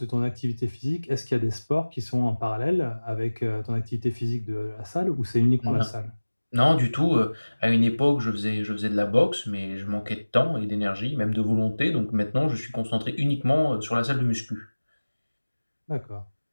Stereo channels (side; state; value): both; inverted; correlation -1.00